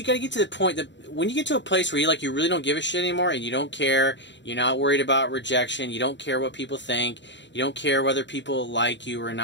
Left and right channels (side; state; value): right; late; 0.52 ms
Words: got to get to the point that when you get to a place where you really don't give a shit anymore, and you don't care, you're not worried about rejection, you don't care what people think, you don't care whether people like you or